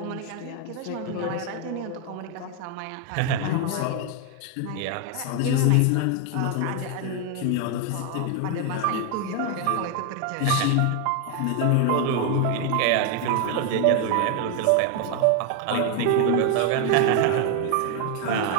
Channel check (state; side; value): different; both; correlation 0.01